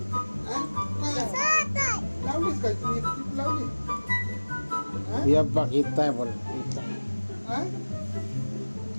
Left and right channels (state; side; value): inverted; both; correlation -1.00